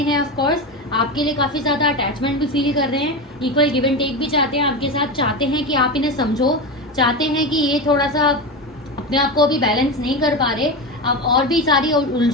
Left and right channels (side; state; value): both; normal; correlation 0.20